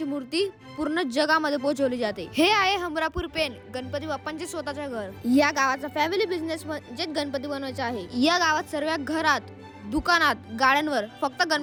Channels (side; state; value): both; identical; correlation 1.00